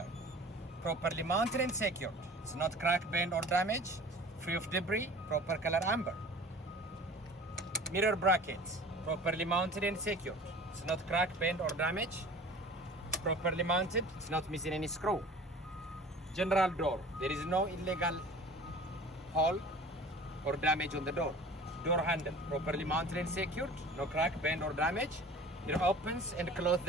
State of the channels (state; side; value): normal; both; correlation 0.43